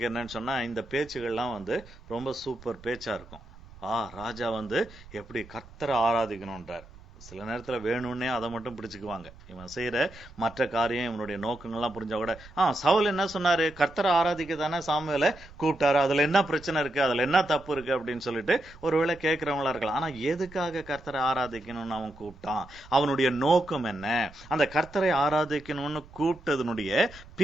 என்னன்னு சொன்னா இந்த பேச்சுகள்லாம் ரொம்ப சூப்பர் பேச்சா இருக்கும். ராஜா எப்படி கர்த்தரை ஆராதிக்கணும்ன்றார். சில நேரத்துல வேணும்னே அதை மட்டும் பிடிச்சுக்குவாங்க. இவன் செய்யற மற்ற காரியம், இவனுடைய நோக்கங்கள்லாம் புரிஞ்சா கூட சவுல் என்ன சொன்னாரு, கர்த்தரை ஆராதிக்க தானே சாமுவேலை கூப்பிட்டாரு, அதுல என்ன பிரச்சனை இருக்கு, அதுல என்ன தப்பு இருக்கு அப்படின்னு சொல்லிட்டு ஒருவேளை கேட்கிறவங்களா இருக்கலாம். ஆனா எதுக்காக கர்த்தரை ஆராதிக்கணும்னு அவன் கூப்பிட்டான், அவனுடைய நோக்கம் என்ன, அந்த கர்த்தரை ஆராதிக்கணும்னு கூப்பிட்டதனுடைய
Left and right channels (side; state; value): right; noise; rumble, 20 dB below the sound